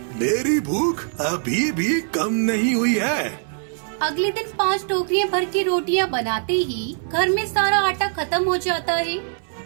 मेरी भूख अभी भी कम नहीं हुई है। अगले दिन 5 टोकरियां भर के रोटियां बनाते ही घर में सारा आटा खत्म हो जाता है।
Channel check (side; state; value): left; silent; digital silence